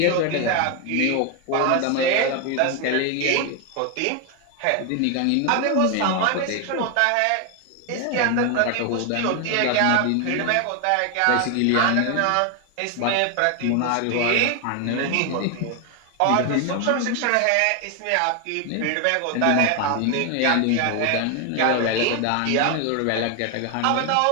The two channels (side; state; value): both; different; correlation 0.01